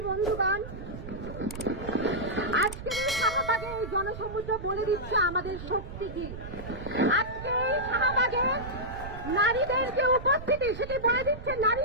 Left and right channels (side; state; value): right; noise; rumble, 11 dB below the sound